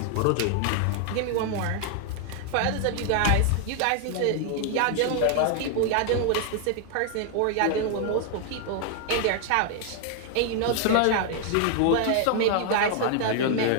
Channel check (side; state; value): both; different; correlation 0.00